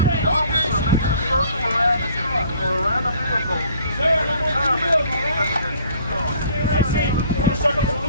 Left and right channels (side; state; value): both; inverted; correlation -0.57